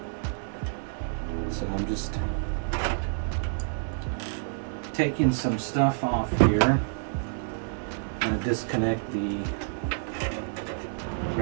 So I'm just taking some stuff off here. I'm going to disconnect the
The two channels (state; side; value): silent; left; digital silence